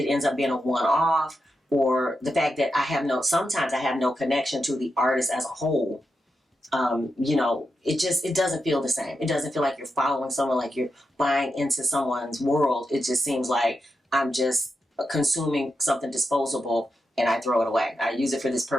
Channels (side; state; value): both; normal; correlation 0.87